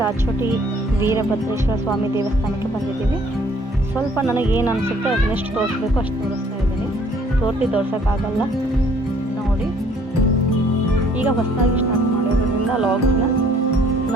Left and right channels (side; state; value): both; normal; correlation 0.59